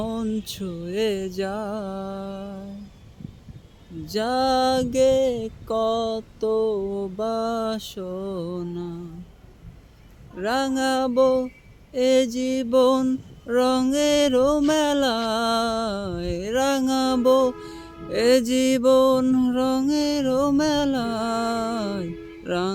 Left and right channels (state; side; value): identical; both; correlation 1.00